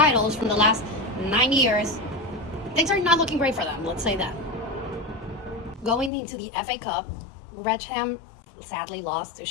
from the last 9 years. Things are not looking great for them, let's say that. Going into the FA Cup, Wrexham sadly lost to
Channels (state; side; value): drops out; right; at 6.1 s